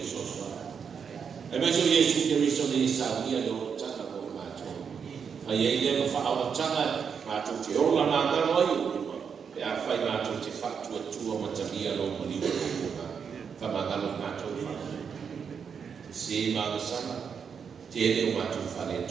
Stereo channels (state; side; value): quieter; left; 6.7 dB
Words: so e me so Yesu ke riso ni sa ia lo tata ko ma to fa ye le fa awa tanga ma to te ola na ka no yo e a fa ma to te fa tu ma ta ia lo mo ni ko fa ma ga lo ma to fa se ma sa te le ma to fa le